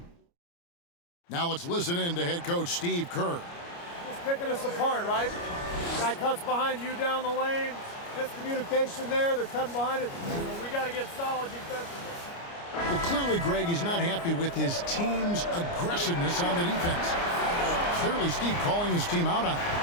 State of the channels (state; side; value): late; right; 29 ms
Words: Now let's listen in to head coach Steve Kerr. Just picking us apart, right? Guy cuts behind you down the lane. Miscommunication there. They're cutting behind it. So we got to get solid defensively. Well, clearly, Greg, he's not happy with his team's aggressiveness on the defense. Clearly, Steve calling his team out on it.